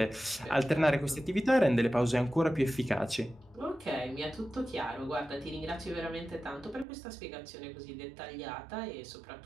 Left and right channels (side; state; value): left; drops out; at 6.9 s